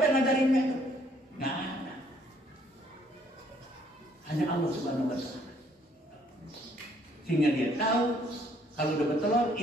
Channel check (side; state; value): both; normal; correlation 0.65